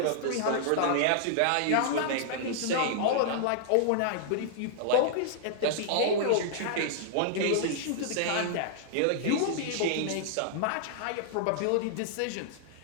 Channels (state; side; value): different; both; correlation -0.01